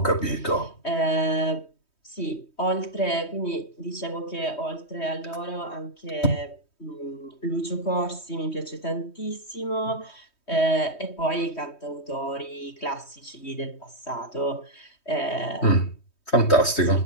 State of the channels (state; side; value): late; right; 3.2 ms